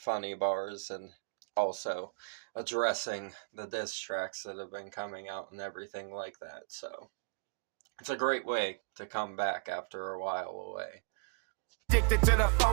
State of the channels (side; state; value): left; quieter; 35.4 dB